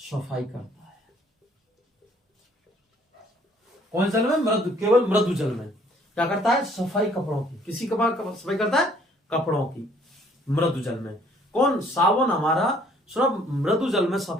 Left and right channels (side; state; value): both; normal; correlation 0.60